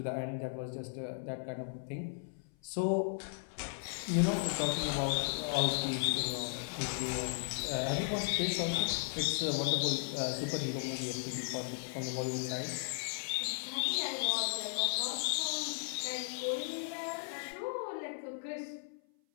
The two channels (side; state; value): right; silent; 54 dB below the other